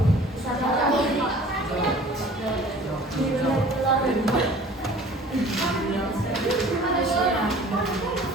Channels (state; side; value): normal; both; correlation 0.47